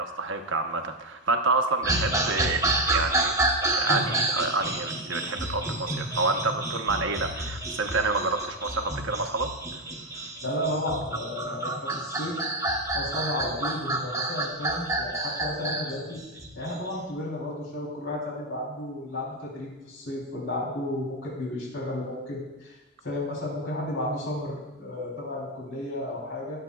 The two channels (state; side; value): normal; both; correlation 0.08